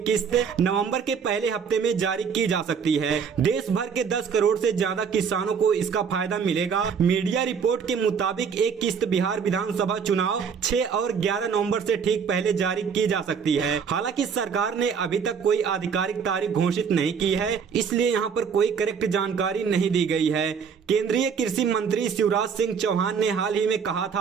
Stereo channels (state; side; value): quieter; left; 6.6 dB